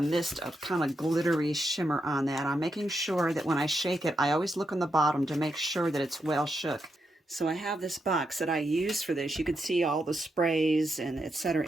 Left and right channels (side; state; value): both; normal; correlation 0.83